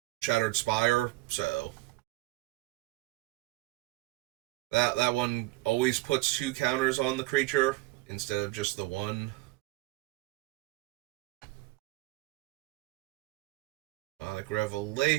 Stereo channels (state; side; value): quieter; left; 19.6 dB